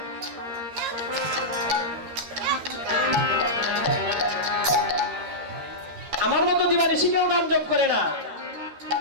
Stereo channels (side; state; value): left; late; 13 ms